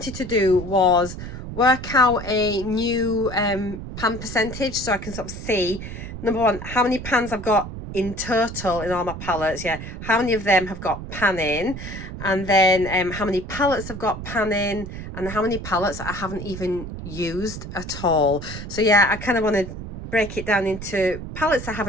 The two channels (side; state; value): right; noise; rumble, 9 dB below the sound